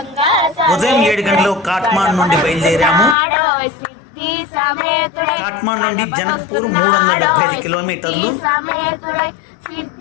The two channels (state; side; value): drops out; right; at 3.2 s